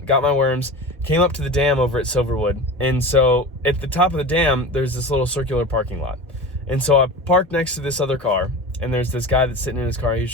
got my worms, came up to the dam over at Silverwood. And so at the top of the dam, there's this little circular parking lot. And so I parked next to this other car, and there's this guy that's sitting in his car. He's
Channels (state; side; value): normal; both; correlation 0.31